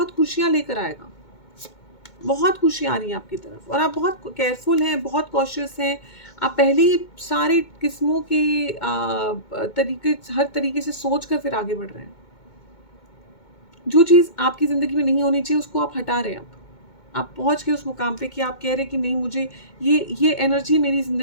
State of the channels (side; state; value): right; late; 2.2 ms